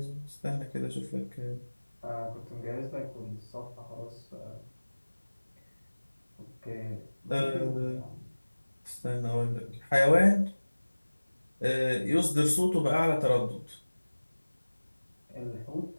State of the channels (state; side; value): inverted; both; correlation -1.00